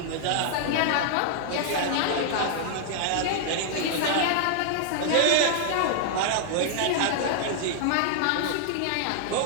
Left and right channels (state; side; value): different; both; correlation -0.01